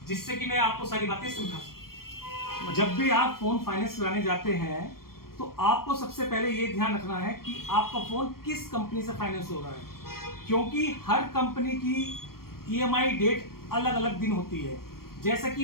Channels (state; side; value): late; right; 0.93 ms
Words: जिससे कि मैं आपको सारी बातें समझा सकूं। जब भी आप फोन फाइनेंस कराने जाते हैं तो आपको सबसे पहले ये ध्यान रखना है कि आपका फोन किस कंपनी से फाइनेंस हो रहा है, क्योंकि हर कंपनी की ईएमआई डेट अलग अलग दिन होती है। जैसे